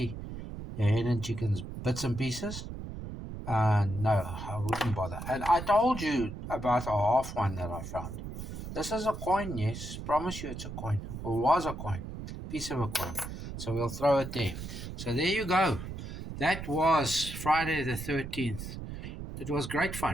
the hen and chickens bits and pieces. No, I wouldn't bother. And I told you about a half one that I found. This is a coin, yes. Promise you it's a coin. Or was a coin. Piece of a coin. So we'll throw it there. So there you go. That was Friday the 13th. It was great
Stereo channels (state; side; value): noise; right; rumble, 8 dB below the sound